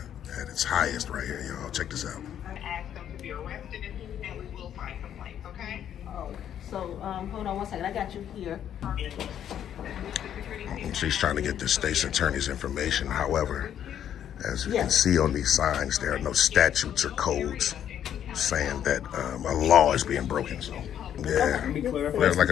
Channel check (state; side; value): quieter; right; 9.9 dB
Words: at its highest right here, y'all. Check this out. Ask them to be arrested, and we will file complaints, okay? Oh, so hold on one second. I got you here. She's trying to get the state's attorney's information. However, as you can see on these signs, there are no statutes or codes saying that a law is being broken. So, yeah, like